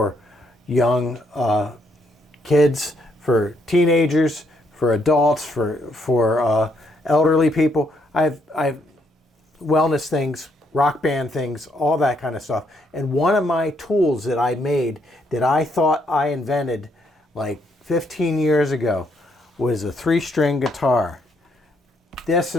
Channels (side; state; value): both; normal; correlation 0.73